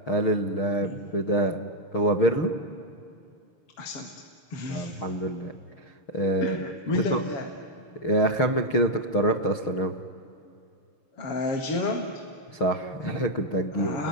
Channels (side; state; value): right; late; 6.4 ms